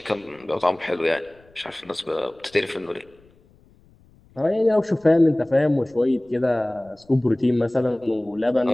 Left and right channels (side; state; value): left; noise; rumble, 30 dB below the sound